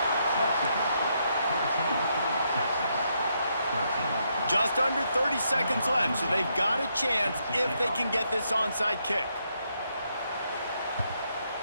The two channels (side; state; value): both; inverted; correlation -0.77